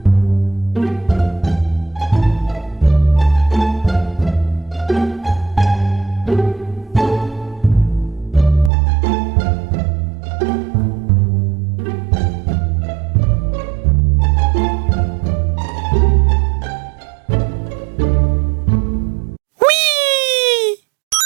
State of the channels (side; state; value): left; drops out; at 8.7 s